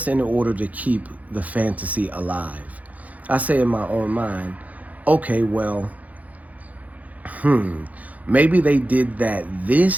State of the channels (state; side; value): late; left; 0.075 ms